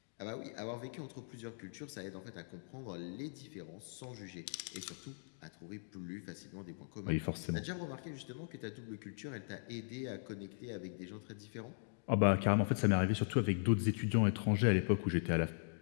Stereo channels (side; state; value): right; silent; digital silence